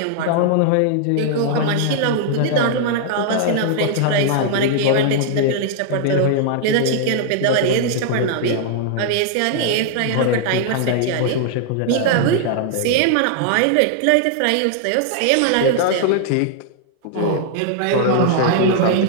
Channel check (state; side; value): different; both; correlation -0.01